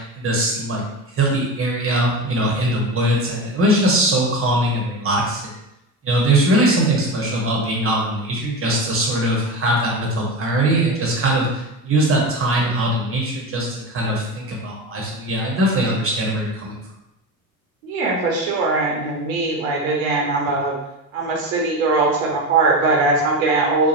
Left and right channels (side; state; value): both; normal; correlation 0.23